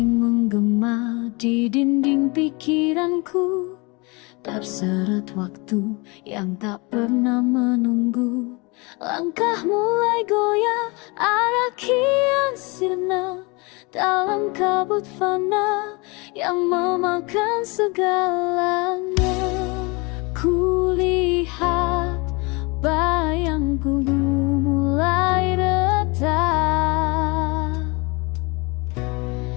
menggema di dinding pikiranku, terseret waktu yang tak pernah menunggu. Langkah mulai goyah, arah kian sirna, dalam kabut fana yang memakan segalanya. Kulihat bayangku mulai retak,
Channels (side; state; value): right; quieter; 27.7 dB